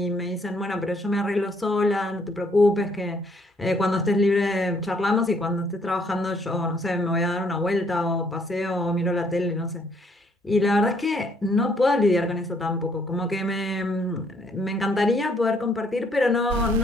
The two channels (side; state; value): both; normal; correlation 0.67